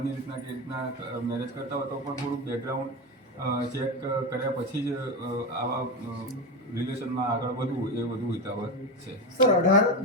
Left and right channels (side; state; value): both; normal; correlation 0.17